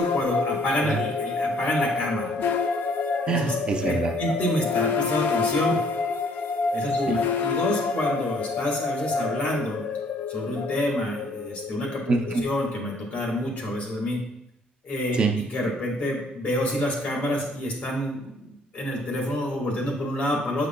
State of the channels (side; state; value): both; normal; correlation 0.62